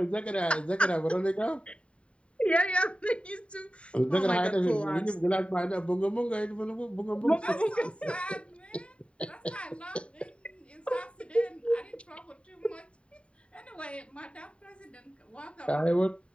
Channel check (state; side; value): late; right; 0.060 ms